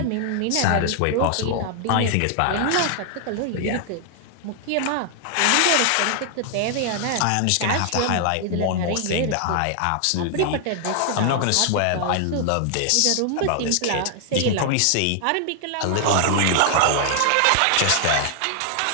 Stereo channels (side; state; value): both; different; correlation 0.00